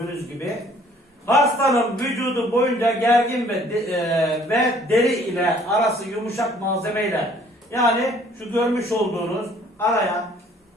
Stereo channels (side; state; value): both; normal; correlation 0.58